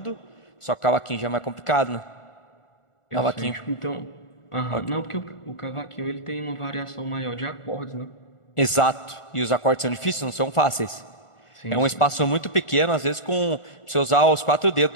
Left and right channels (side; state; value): right; late; 1.4 ms